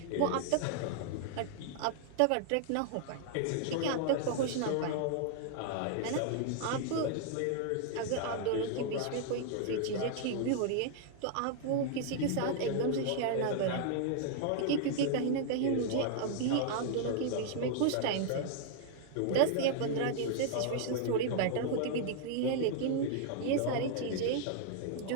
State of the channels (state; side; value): different; both; correlation -0.01